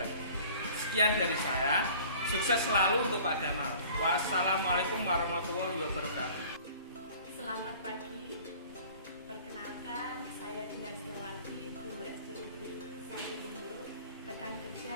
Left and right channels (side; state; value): both; inverted; correlation -0.48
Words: Sekian dari saya. Sukses selalu untuk Pak Gamal. Wassalamualaikum warahmatullahi wabarakatuh. Selamat pagi. Perkenalkan, saya Dinar Setiawati, guru SD Negeri 1 Bondo, rekan kerja